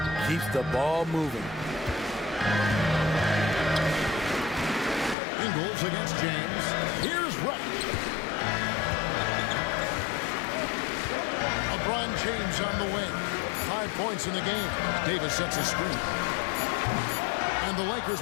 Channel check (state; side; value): drops out; right; at 5.2 s